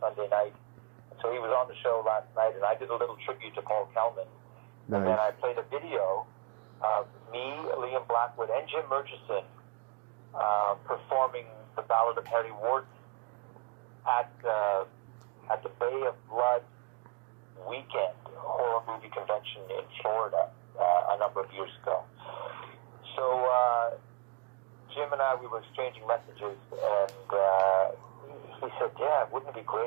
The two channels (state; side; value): quieter; left; 26.9 dB